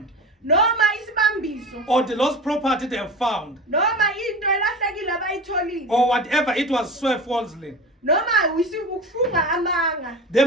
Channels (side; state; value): both; normal; correlation 0.31